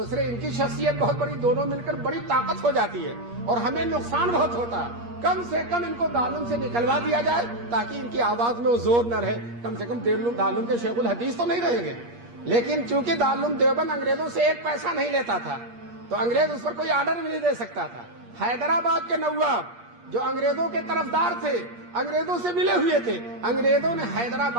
इनकी शख्सियत बहुत बड़ी, दोनों मिलकर बड़ी ताकत हो जाती है और हमें नुकसान बहुत होता। कम से कम इनको दारुल से निकलवा दिया जाए ताकि इनकी आवाज में वो जोर न रहे, कम से कम दारुल के शेखुल हदीस तो नहीं रहेंगे। लेकिन चूंकि दारुल देवबंद अंग्रेजों से एक पैसा नहीं लेता था तो अंग्रेज उस पर कोई आर्डर भी नहीं दे सकता था। हैदराबाद के नवाब जो अंग्रेजों के तरफदार थे, अंग्रेजों से मिले हुए थे, अंग्रेजों ने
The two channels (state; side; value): late; left; 8.5 ms